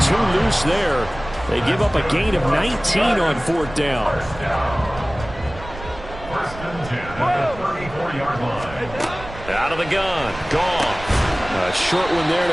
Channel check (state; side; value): noise; right; rumble, 14 dB below the sound